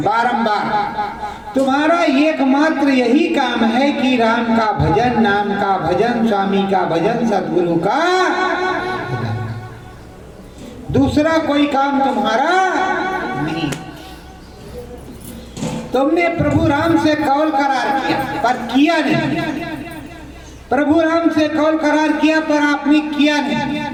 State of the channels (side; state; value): both; identical; correlation 1.00